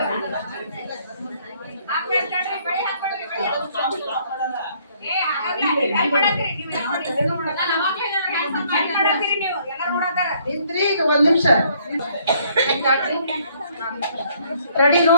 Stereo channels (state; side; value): inverted; both; correlation -0.64